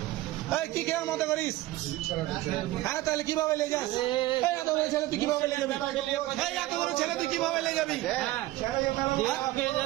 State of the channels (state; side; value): quieter; left; 17.2 dB